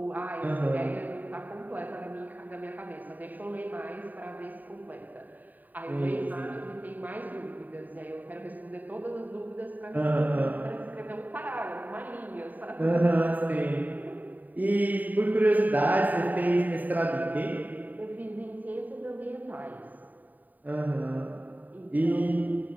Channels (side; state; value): left; late; 0.085 ms